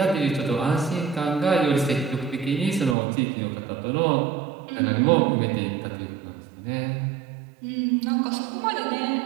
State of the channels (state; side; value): drops out; left; at 3.0 s